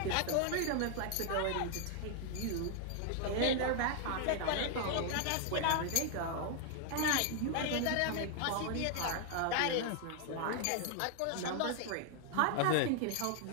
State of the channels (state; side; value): different; both; correlation 0.00